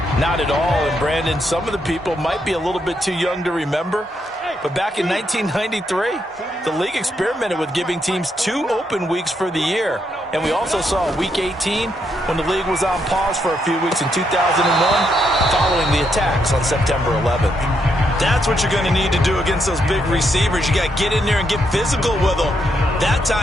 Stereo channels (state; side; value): normal; both; correlation 0.78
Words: Not at all. And, Brandon, some of the people might be a little bit too young to remember. But back in 1993, the league experimented with giving teams 2 open weeks for the year. And we also saw Week 18 when the league was on pause for a few weeks in 2001 following the attacks on September 11th. That's what you're going to need to do against those big receivers. You got to get in there and get physical with them. That